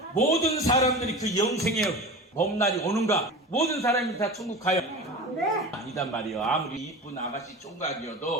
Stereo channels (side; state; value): both; normal; correlation 0.32